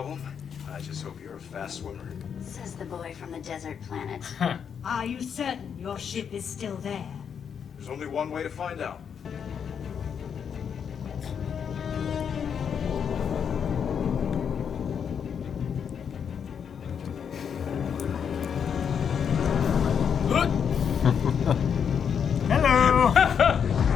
I just hope you're a fast swimmer. says the boy from the desert planet. Are you certain your ship is still there? There's only one way to find out. Hello.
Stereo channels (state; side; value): quieter; right; 7.4 dB